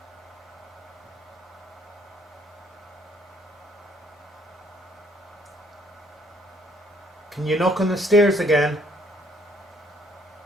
Can you knock on the stairs again?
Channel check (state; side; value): normal; both; correlation 0.65